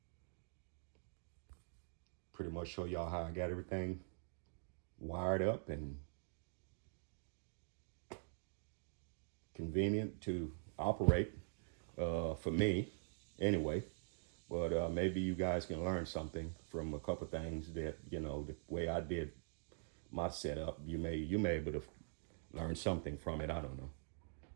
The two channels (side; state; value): left; silent; digital silence